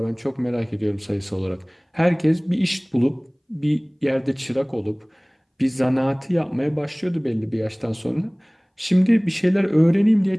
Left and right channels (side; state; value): both; identical; correlation 1.00